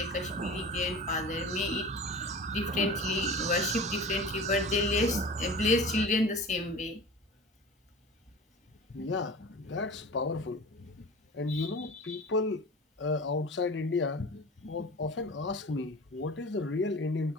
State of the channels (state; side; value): normal; both; correlation 0.36